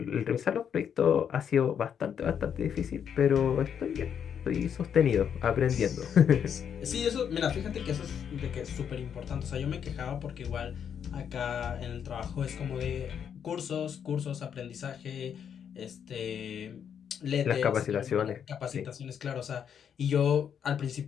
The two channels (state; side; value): quieter; right; 8.1 dB